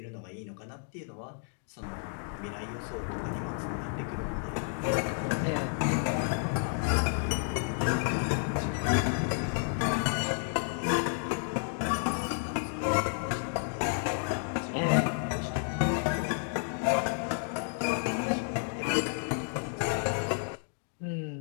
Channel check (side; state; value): right; silent; 57 dB below the other